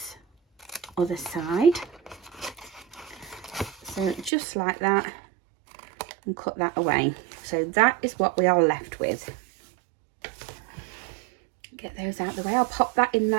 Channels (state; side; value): drops out; left; at 4.3 s